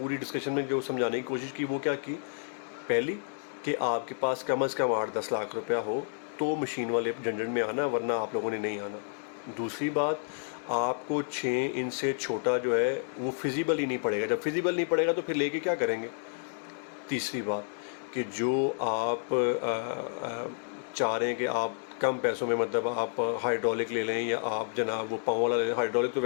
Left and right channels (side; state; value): right; silent; digital silence